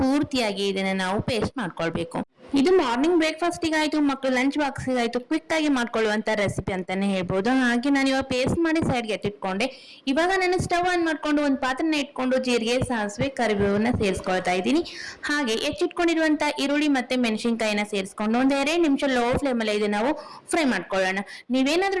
ಪೂರ್ತಿಯಾಗಿ ಇದನ್ನ ನಾವು ಪೇಸ್ಟ್ ಮಾಡ್ಕೊಳ್ಬೇಕು. ಇದು ಮಾರ್ನಿಂಗ್ ಬ್ರೇಕ್ಫಾಸ್ಟ್ ಆಯ್ತು, ಮಕ್ಕಳು ಲಂಚ್ ಬಾಕ್ಸ್ ಆಯ್ತು, ಕ್ವಿಕ್ ಆಗಿ ಮಾಡ್ಕೊಳ್ಳುವಂತ ರೆಸಿಪಿ ಅಂತಾನೆ ಹೇಳ್ಬೋದು. ಹಾಗೆ ನಾನು ಇವಾಗ ಪೇಸ್ಟ್ ಮಾಡಿ ಸೈಡ್ಗೆ ಎತ್ತಿಟ್ಕೊಂಡೆ. ಇವಾಗ ನಾನು ಸ್ಟವ್ ಆನ್ ಮಾಡ್ಕೊಂಡು ಒಂದು ಪಾತ್ರೆನ ಇಟ್ಕೊಂಡು ಜೀರಿಗೆ, ಸಾಸಿವೆ, ಕರಿಬೇವನ್ನ ಸೇರಿಸ್ಕೊಳ್ತಾ ಇದ್ದೀನಿ. ಹಾಗೆ ಹೆಚ್ಚಿಟ್ಕೊಂಡಿರುವಂತ ಈರುಳ್ಳಿ ಮತ್ತೆ ಮೆಣಸಿನಕಾಯಿನ ಸೇರಿಸ್ಕೊಂಡು ಒಂದ್ 2 ನಿಮಿಷ ಲೋ ಫ್ಲೇಮ್ ಅಲ್ಲಿ ಇದು ನಾವು ಫ್ರೈ ಮಾಡ್ಕೊಳ್ಳೋಣ.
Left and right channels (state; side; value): identical; both; correlation 1.00